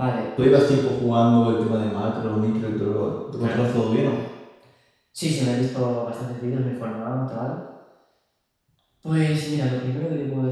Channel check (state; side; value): identical; both; correlation 1.00